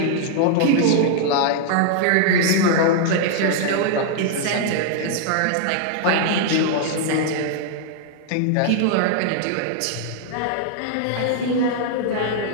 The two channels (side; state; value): both; different; correlation -0.01